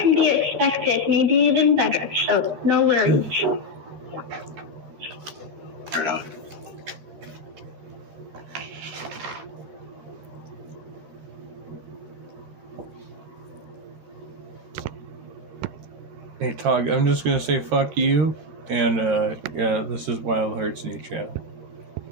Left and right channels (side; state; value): left; late; 13 ms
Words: be expected, maybe even better, so no worries. Right on. Hey Tog, I'm just gonna say fuck you, and yeah, this is Wild Hearts new channel.